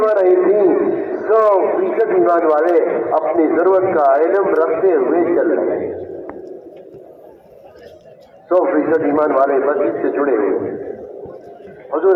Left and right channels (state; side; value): identical; both; correlation 1.00